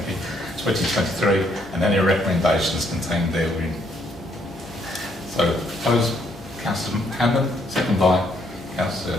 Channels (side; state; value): both; normal; correlation 0.70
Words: you, 2023, and any recommendations contained therein. So, proposed, Councillor Hammond, second by Councillor